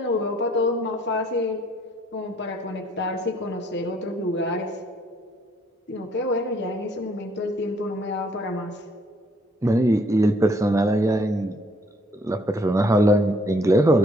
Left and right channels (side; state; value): both; normal; correlation 0.65